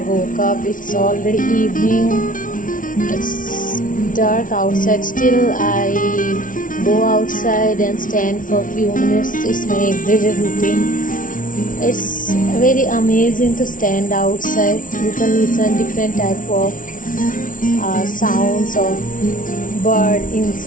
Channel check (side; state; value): right; late; 0.38 ms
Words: woke up. It's already evening. It's dark outside. Still I go outside and stand for few minutes. It's my everyday routine. It's very amazing to stand outside. You can listen different type of sounds of bird,